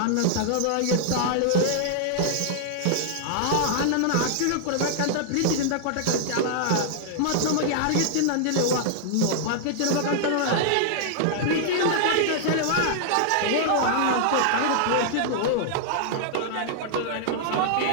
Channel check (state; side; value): different; both; correlation -0.01